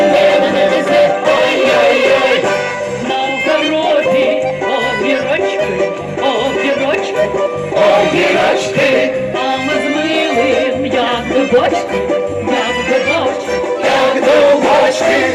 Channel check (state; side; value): identical; both; correlation 1.00